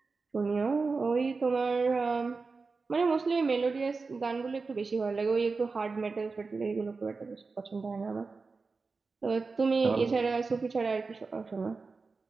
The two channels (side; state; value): left; quieter; 4.3 dB